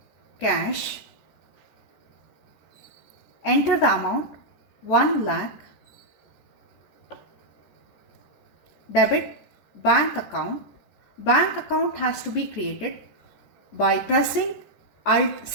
cash. Enter the amount 1 lakh. Debit, bank account. Bank account has to be created by pressing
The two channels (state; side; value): late; right; 14 ms